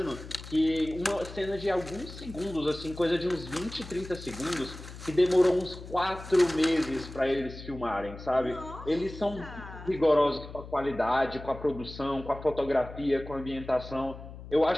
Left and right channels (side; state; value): left; noise; hum, 13 dB below the sound